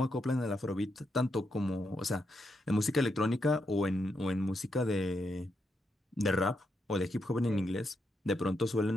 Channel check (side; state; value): both; normal; correlation 0.82